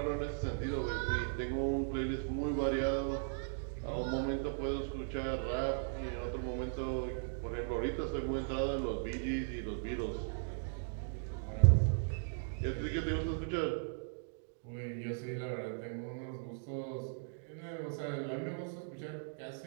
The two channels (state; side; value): silent; left; digital silence